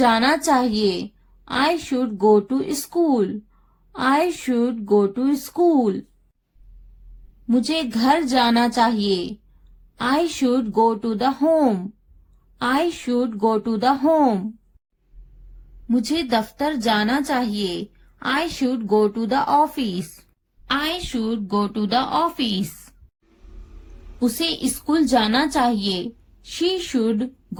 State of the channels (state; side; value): identical; both; correlation 1.00